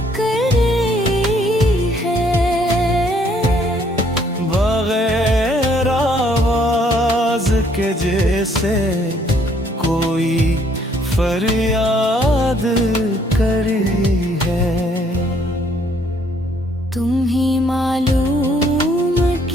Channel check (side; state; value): both; normal; correlation 0.65